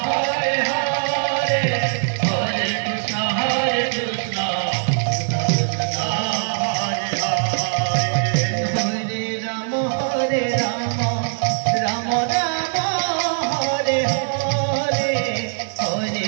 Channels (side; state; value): left; silent; digital silence